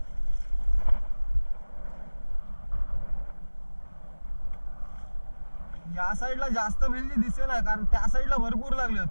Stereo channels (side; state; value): both; inverted; correlation -1.00